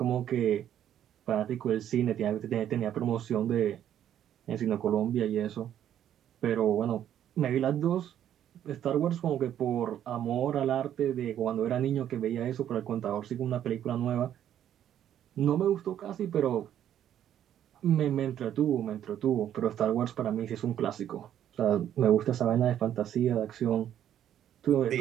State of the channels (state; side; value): quieter; left; 10.5 dB